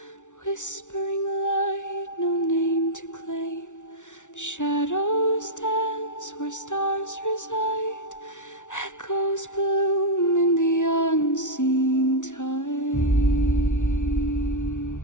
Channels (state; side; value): late; right; 0.86 ms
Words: whispering light, no name to claim. Shadows dance where stars reside, echoes bloom in the unseen tide.